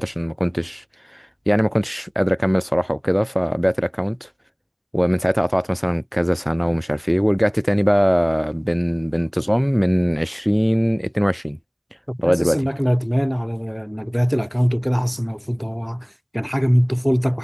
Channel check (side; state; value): both; identical; correlation 1.00